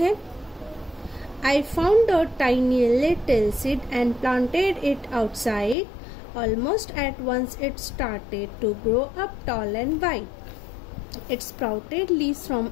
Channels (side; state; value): right; drops out; at 5.8 s